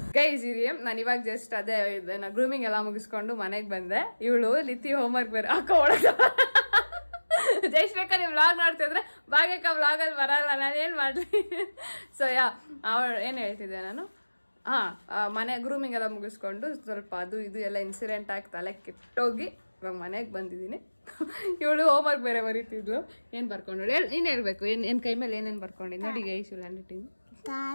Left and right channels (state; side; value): inverted; both; correlation -1.00